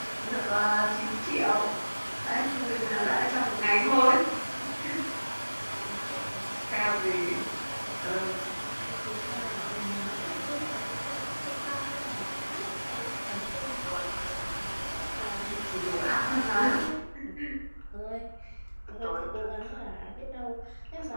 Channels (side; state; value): both; inverted; correlation -1.00